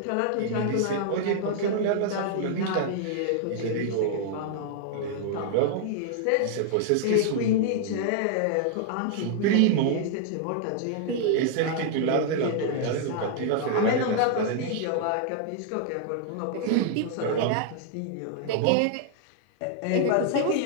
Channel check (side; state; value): both; different; correlation -0.01